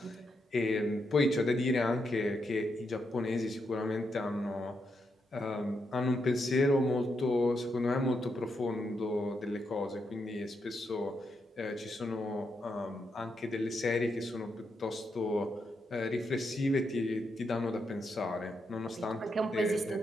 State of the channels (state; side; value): normal; both; correlation 0.82